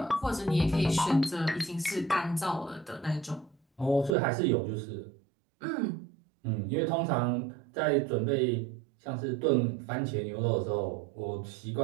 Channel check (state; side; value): drops out; left; at 4.2 s